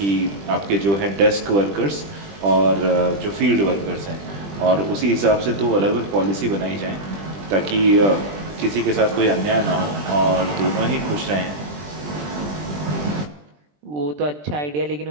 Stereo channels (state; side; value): late; left; 20 ms